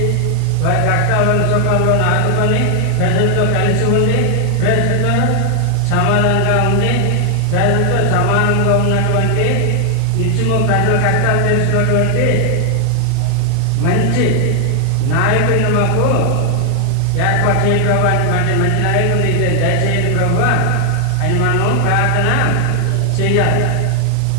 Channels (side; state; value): both; different; correlation 0.00